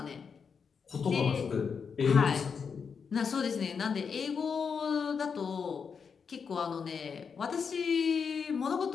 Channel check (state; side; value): quieter; right; 6.1 dB